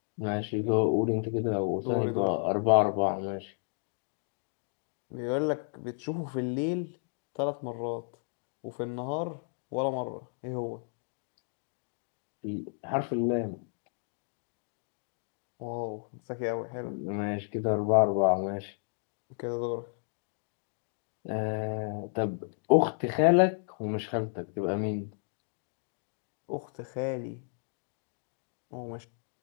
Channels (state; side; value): silent; right; digital silence